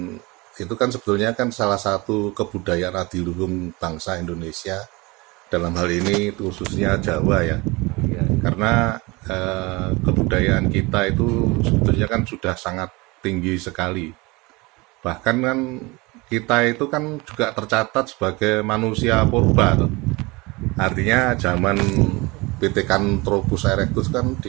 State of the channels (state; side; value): quieter; left; 24.5 dB